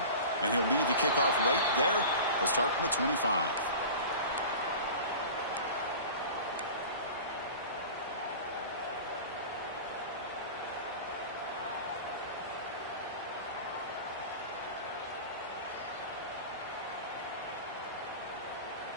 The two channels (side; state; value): both; inverted; correlation -0.36